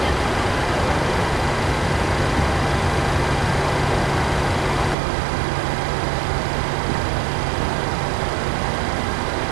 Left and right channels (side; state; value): left; drops out; at 5.0 s